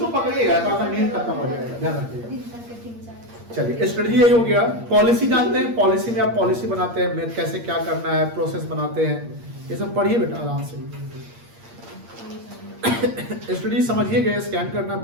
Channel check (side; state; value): left; late; 8.6 ms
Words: पकड़िएगा, तो आपका नींद खत्म हो जाएगा, ध्यान रखिएगा। चलिए, स्ट्रेटजी यही हो गया। पॉलिसी जानते हैं, पॉलिसी में आप पॉलिसी बनाते हैं, कैसे क्या करना है, प्रोसेस बनाते हैं, ये सब पढ़िए बेटा आराम से। स्ट्रेटजी समझिए गए, स्कैन करना,